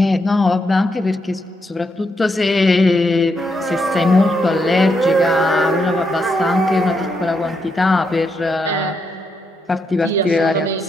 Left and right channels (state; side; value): normal; both; correlation 0.80